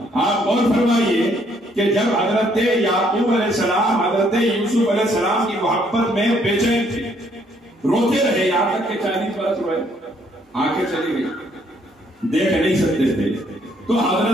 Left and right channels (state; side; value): normal; both; correlation 0.68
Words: آپ غور فرمائیے کہ جب حضرت یعقوب علیہ السلام حضرت یوسف علیہ السلام کی محبت میں بے چین تھے، روتے رہے، یہاں تک کہ 40 برس روئے، آنکھیں چلی گئی، دیکھ نہیں سکتے تھے، تو